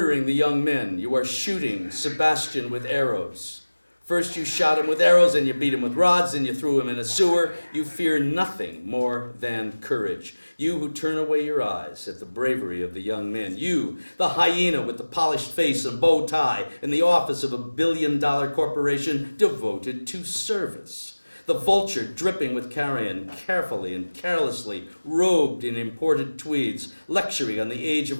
the young men. You are shooting Sebastian with arrows. First you shot him with arrows, then you beat him with rods, then you threw him in a sewer. You fear nothing more than courage. You who turn away your eyes at the bravery of the young men. You, the hyena with the polished face and bow tie in the office of a billion-dollar corporation devoted to service. The vulture dripping with carrion, carefully and carelessly robed in imported tweeds, lecturing on the age of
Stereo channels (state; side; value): inverted; both; correlation -1.00